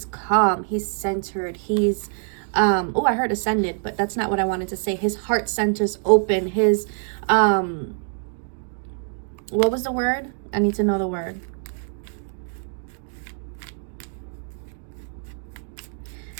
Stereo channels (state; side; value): silent; left; 62 dB below the other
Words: calm, he's centered, he's oh, I heard ascended, but that's not what I wanted to say. His heart center's open. His what was the word? I need to know the word.